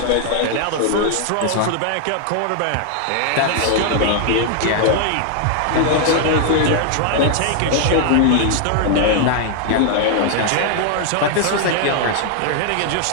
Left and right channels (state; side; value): different; both; correlation 0.00